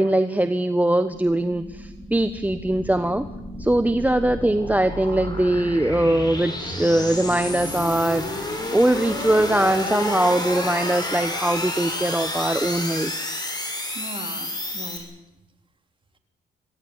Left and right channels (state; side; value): normal; both; correlation 0.85